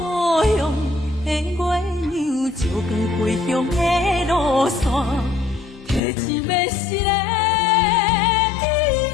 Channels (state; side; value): drops out; right; at 6.0 s